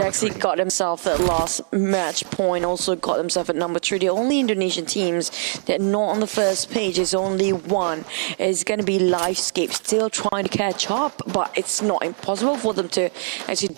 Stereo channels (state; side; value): silent; left; 62 dB below the other